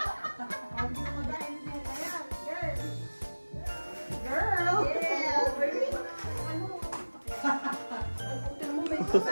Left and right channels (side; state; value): both; inverted; correlation -1.00